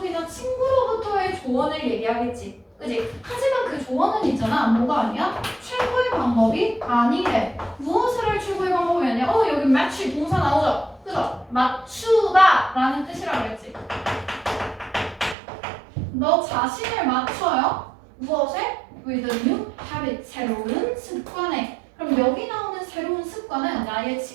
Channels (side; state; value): left; drops out; at 15.4 s